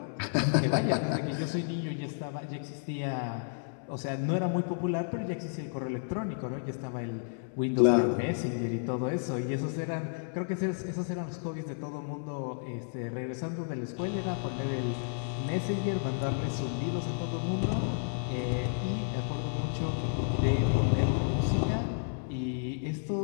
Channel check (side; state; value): right; silent; digital silence